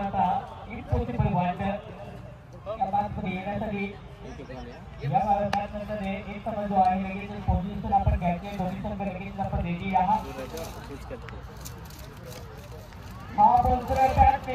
इम्पॉसिबल वाटतं पुढे येण्यासाठी या नंतर एक समज जो आहे लगेच पोझिशन आपण घ्यायचे दोन्ही संघ लगेच आपण रेडी आहात हा बोलतोय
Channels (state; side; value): identical; both; correlation 1.00